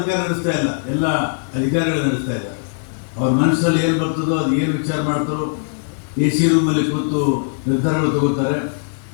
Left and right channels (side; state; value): right; silent; digital silence